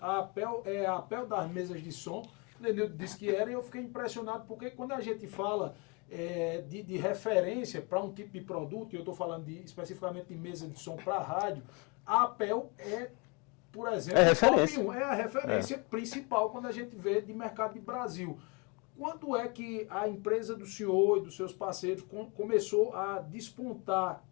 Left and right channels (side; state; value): right; quieter; 30.8 dB